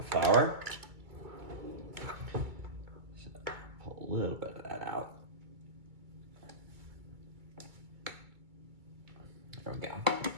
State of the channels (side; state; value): left; late; 2.2 ms